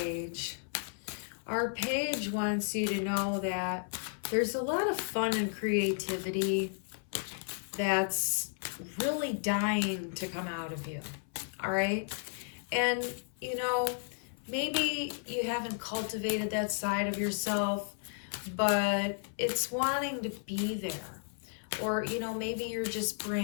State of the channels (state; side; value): silent; right; 55 dB below the other